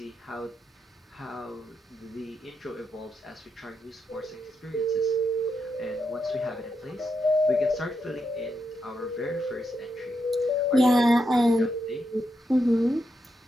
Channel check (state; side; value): normal; both; correlation 0.83